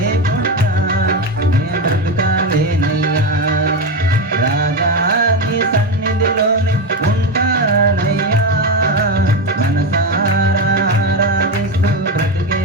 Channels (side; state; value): both; normal; correlation 0.14